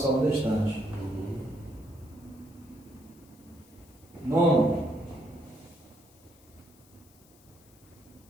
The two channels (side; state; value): left; noise; hiss, 27 dB below the sound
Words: falando distante. Nono,